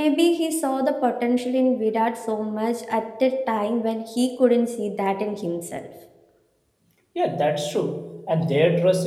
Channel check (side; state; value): both; identical; correlation 1.00